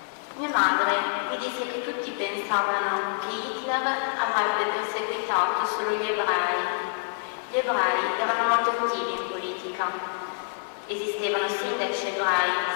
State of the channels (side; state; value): right; silent; 60 dB below the other